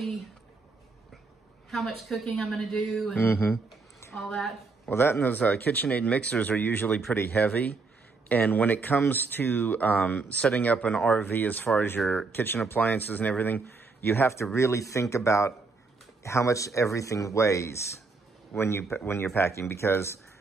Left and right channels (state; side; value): quieter; left; 4.1 dB